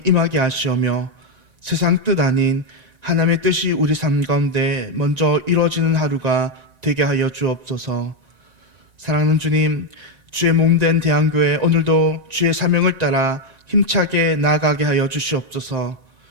임하게 하시오며 세상 뜻 아닌 하나님의 뜻이 우리 삶 가운데 먼저 이루어지는 하루가 되게 하여 주옵소서. 사랑하는 주님, 주의 몸된 대한교회 오늘도 주의 사명을 따라 힘차게 나아가게 하여 주시옵소서.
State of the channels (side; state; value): left; late; 1.9 ms